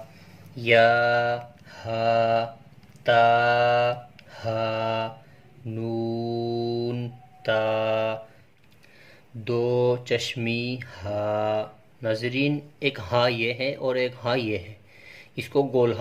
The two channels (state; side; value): identical; both; correlation 1.00